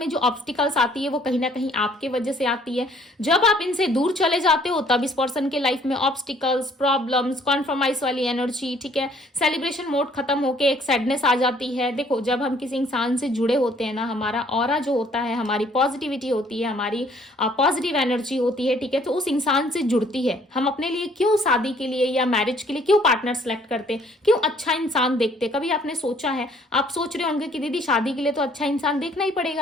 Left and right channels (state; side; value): normal; both; correlation 0.61